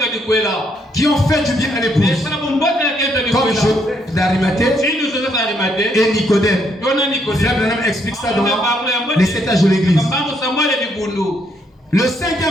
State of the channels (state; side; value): normal; both; correlation 0.73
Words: qui ont fait du bien à l'épouse, comme Joseph d'Arimathée et Nicodème. Frère Branham explique ça dans les 7 âges de l'église. Le